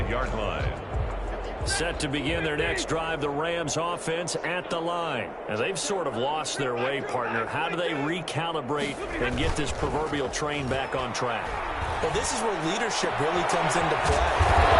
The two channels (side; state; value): both; identical; correlation 1.00